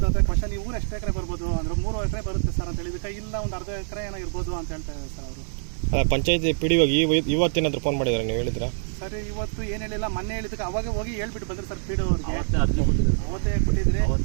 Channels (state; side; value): silent; left; digital silence